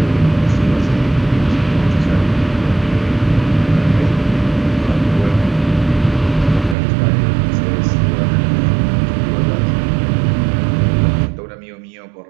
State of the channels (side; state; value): left; drops out; at 6.8 s